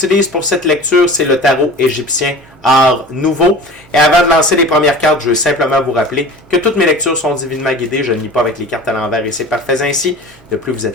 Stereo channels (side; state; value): both; normal; correlation 0.38